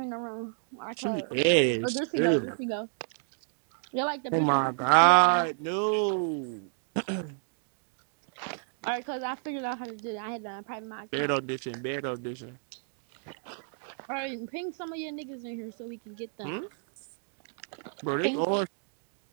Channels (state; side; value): silent; left; 57 dB below the other